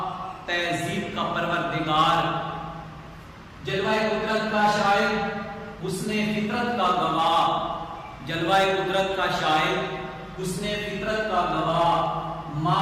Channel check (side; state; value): both; identical; correlation 1.00